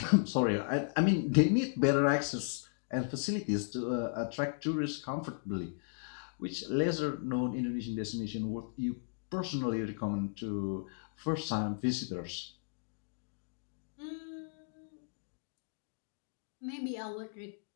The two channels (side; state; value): right; silent; digital silence